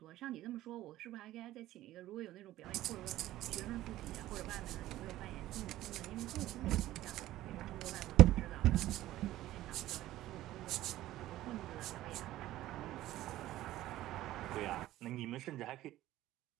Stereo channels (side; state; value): left; quieter; 15.1 dB